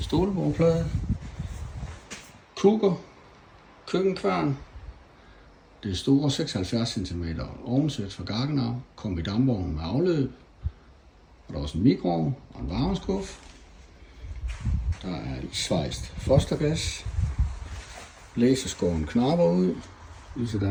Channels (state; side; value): identical; both; correlation 1.00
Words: Kukker, køkkenkværn. Det store 76 cm ovnsæt fra Gaggenau kom i dampvognen med afløb. Og der er også en mikroovn og en varmeskuff. Der er et svejst fostergas. Blæseskåren knapper ud.